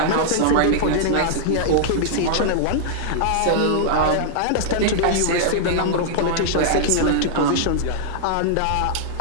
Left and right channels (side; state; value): both; different; correlation -0.01